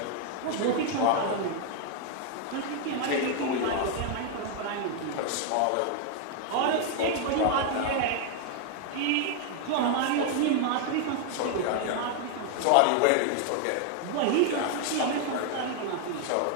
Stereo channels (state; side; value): different; both; correlation 0.00